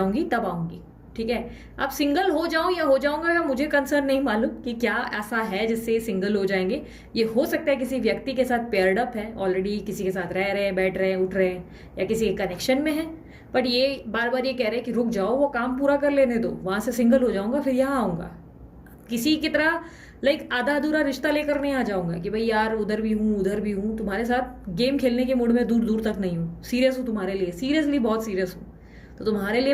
तब आऊंगी। ठीक है, अब सिंगल हो जाऊं या हो जाऊंगा या मुझे कंसर्न नहीं मालूम कि क्या ऐसा है जिससे सिंगल हो जाएंगे। ये हो सकता है किसी व्यक्ति के साथ पेयर्ड अप है, ऑलरेडी किसी के साथ रह रहे हैं, बैठ रहे हैं, उठ रहे हैं, या किसी के कनेक्शन में है। बट ये बार बार ये कह रहे हैं कि रुक जाओ, वो काम पूरा कर लेने दो, वहां से सिंगल हो जाऊंगा फिर यहाँ आऊंगा। किसी की तरह लाइक आधा अधूरा रिश्ता लेकर नहीं आ जाऊंगा कि भाई यार उधर भी हूँ उधर भी हूँ, तुम्हारे साथ गेम खेलने के मूड में दूर दूर तक नहीं हूँ, सीरियस हूँ तुम्हारे लिए, सीरियसली बहुत सीरियस हूँ, तो तुम्हारे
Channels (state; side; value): identical; both; correlation 1.00